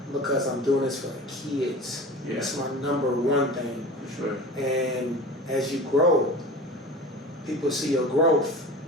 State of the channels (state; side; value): normal; both; correlation 0.36